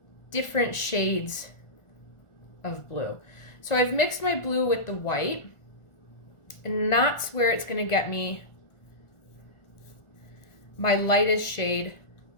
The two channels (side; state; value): right; late; 1.4 ms